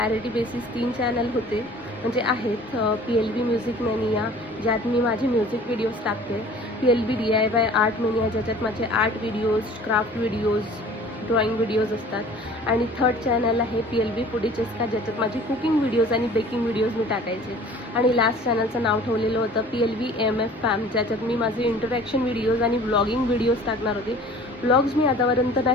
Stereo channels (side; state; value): both; normal; correlation 0.47